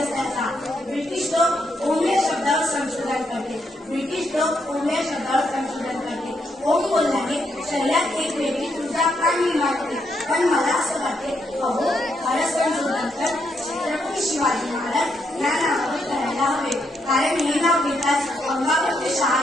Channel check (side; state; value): both; normal; correlation 0.78